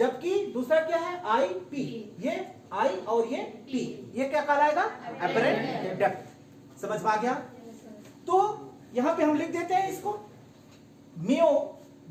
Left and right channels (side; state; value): both; identical; correlation 1.00